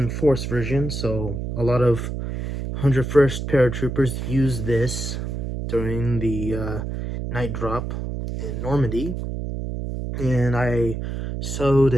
version, so a lot of 101st paratroopers use this during the night drop in Normandy. And I sewed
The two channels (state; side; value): noise; right; hum, 4 dB below the sound